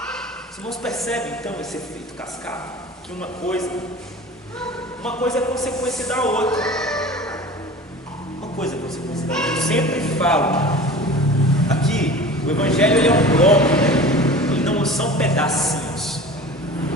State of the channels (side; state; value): both; normal; correlation 0.38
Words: Os irmãos percebem então esse efeito cascata? Que uma coisa é consequência da outra. Uma coisa é consequência da outra. Eu sempre falo aqui, o Evangelho ele é um bloco, né? Ele não são pedacinhos.